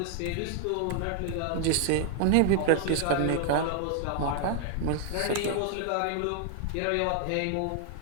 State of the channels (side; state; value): both; different; correlation 0.00